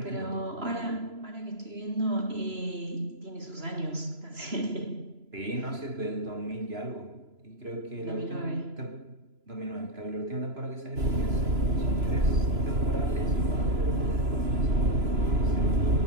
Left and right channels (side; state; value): left; late; 3.0 ms